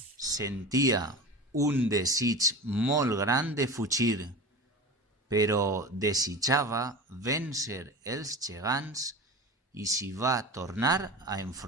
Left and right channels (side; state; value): both; normal; correlation 0.31